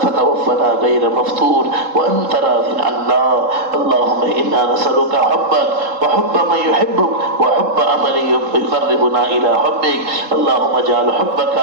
غير مفتون وأنت راض عنا. اللهم إنا نسألك حبك وحب من يحبك وحب عمل يقربنا إلى حبك. اللهم اجعل حبك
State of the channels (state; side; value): late; left; 3.7 ms